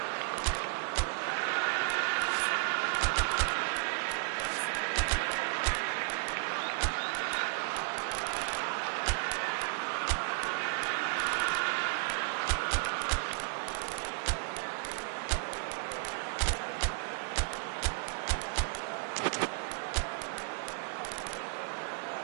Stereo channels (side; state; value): left; silent; digital silence